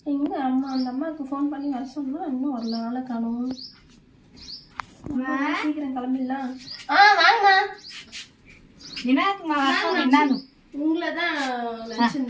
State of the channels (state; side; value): identical; both; correlation 1.00